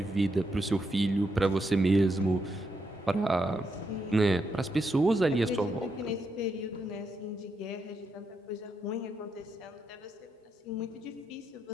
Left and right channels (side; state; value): both; normal; correlation 0.81